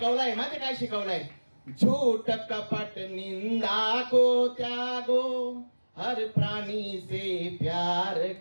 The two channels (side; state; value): both; inverted; correlation -1.00